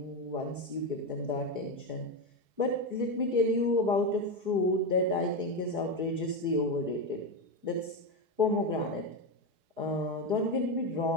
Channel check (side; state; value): left; late; 4.7 ms